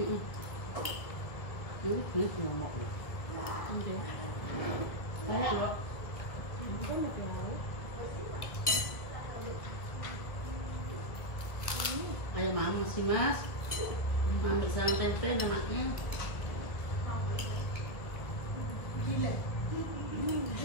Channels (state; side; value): late; right; 1.6 ms